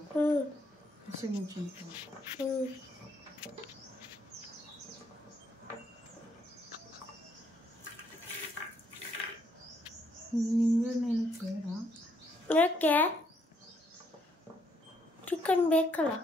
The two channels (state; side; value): normal; both; correlation 0.71